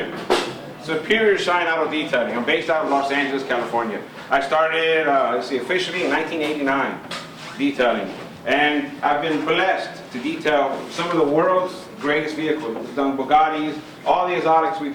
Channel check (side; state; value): both; identical; correlation 1.00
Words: Superior Shine Auto Detailing. I'm based out of Los Angeles, California. I started, officially in 1989, detailing. And I've been blessed to detail some of the world's greatest vehicles. We've done Bugattis, all the exotics we